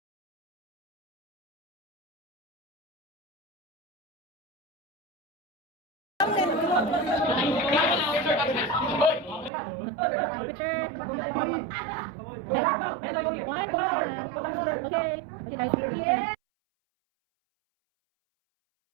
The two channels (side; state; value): left; drops out; at 9.5 s